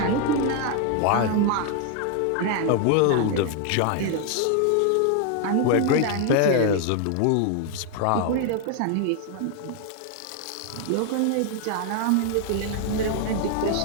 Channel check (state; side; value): different; both; correlation 0.00